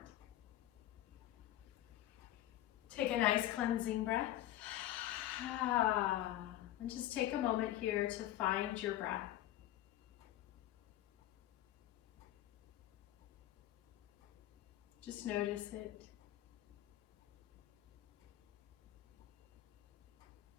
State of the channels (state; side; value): quieter; right; 13.8 dB